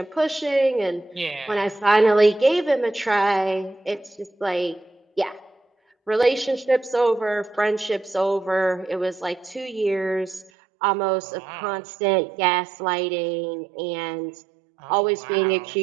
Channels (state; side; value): drops out; left; at 10.5 s